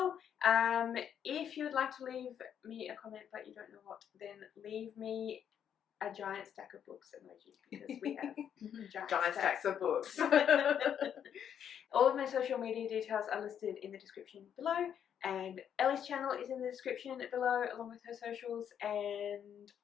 If you would like to leave me a comment but you don't know what, then leave me a giant stack of books emoji, because we have giant stacks of books. All of my social media details are listed in the description below, and Ellie's channel is in the description below along with her socials, and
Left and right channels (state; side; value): quieter; right; 8.8 dB